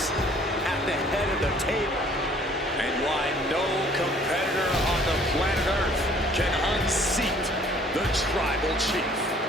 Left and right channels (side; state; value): both; normal; correlation 0.56